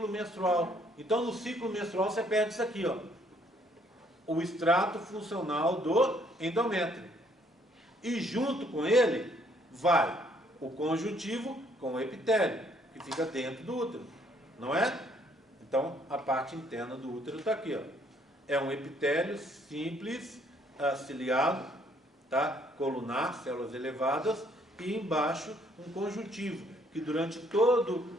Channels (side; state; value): both; normal; correlation 0.65